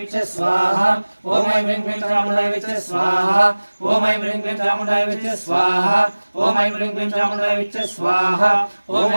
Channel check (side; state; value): both; inverted; correlation -1.00